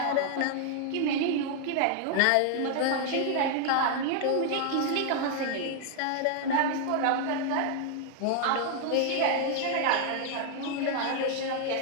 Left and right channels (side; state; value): both; different; correlation 0.00